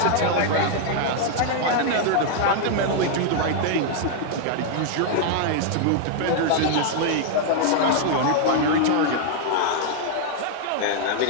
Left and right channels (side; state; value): both; different; correlation -0.01